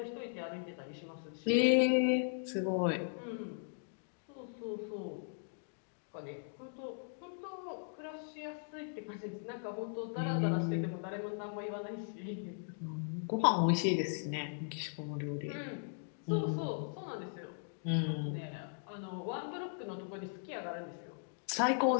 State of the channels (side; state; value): right; silent; digital silence